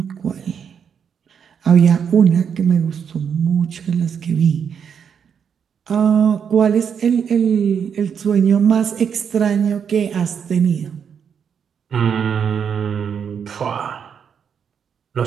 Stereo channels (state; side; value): quieter; left; 7.4 dB